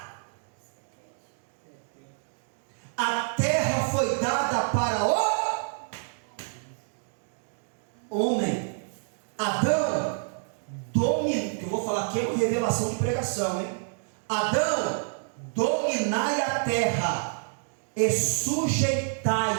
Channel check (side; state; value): left; silent; digital silence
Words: A terra foi dada para o homem. Adão domina. Eu vou falar aqui é uma revelação de pregação, hein? Adão, dominai a terra e